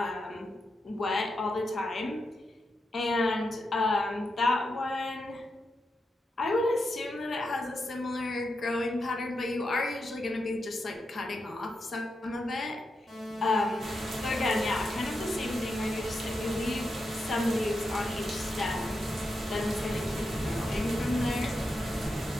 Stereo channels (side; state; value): both; normal; correlation 0.86